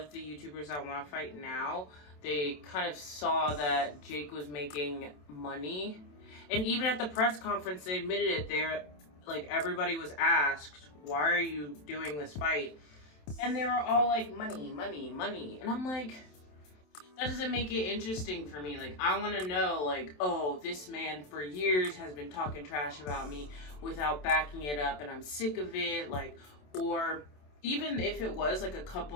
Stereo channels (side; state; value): right; late; 27 ms